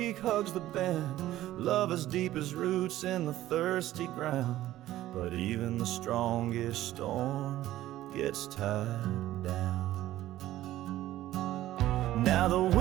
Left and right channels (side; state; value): left; quieter; 14.5 dB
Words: hugs the bend, love as deep as roots in the thirsty ground. But even the strongest storm gets tied down. Now the